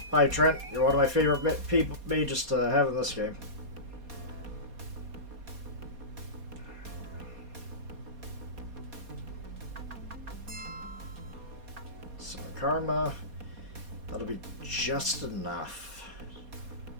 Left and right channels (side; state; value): left; late; 4.2 ms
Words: Hi, Trent. You're one of my favorite mages to have in this game. Some karma. That'll be just enough.